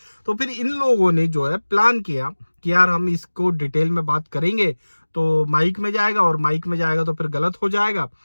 तो फिर इन लोगों ने जो है प्लान किया कि यार हम इसको डिटेल में बात करेंगे, तो माइक में जाएगा, और माइक में जाएगा तो फिर गलत हो जाएगा,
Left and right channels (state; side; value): inverted; both; correlation -1.00